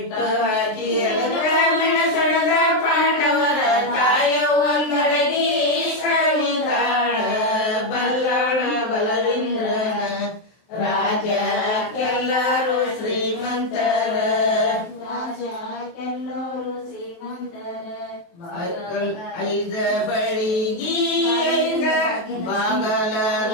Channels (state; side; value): late; right; 23 ms